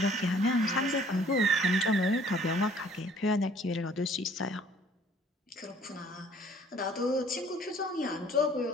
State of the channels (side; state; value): both; normal; correlation 0.57